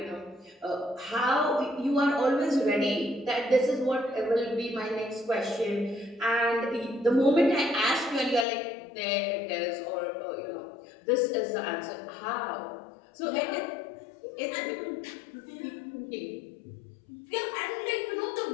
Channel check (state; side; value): drops out; right; at 8.5 s